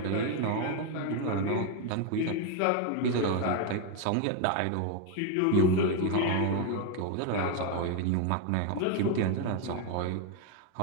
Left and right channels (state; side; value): different; both; correlation 0.01